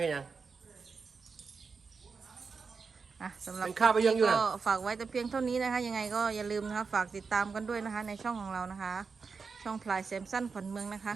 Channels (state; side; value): quieter; left; 5.0 dB